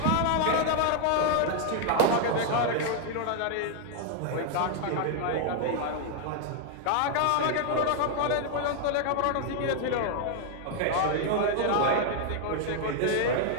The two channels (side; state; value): both; different; correlation 0.00